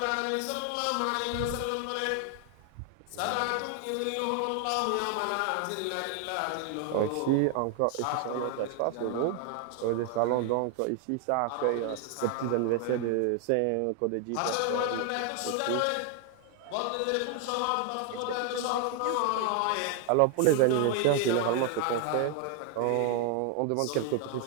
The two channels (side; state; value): both; different; correlation 0.01